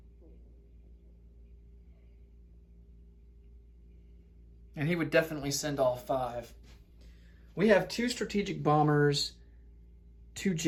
And he would definitely send all 5. We have 2 strategic bombers, 2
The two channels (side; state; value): both; identical; correlation 1.00